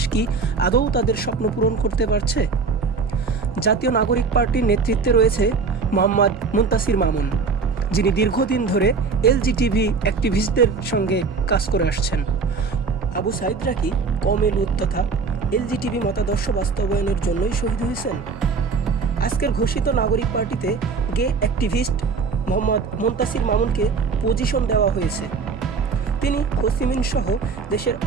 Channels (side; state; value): left; quieter; 4.9 dB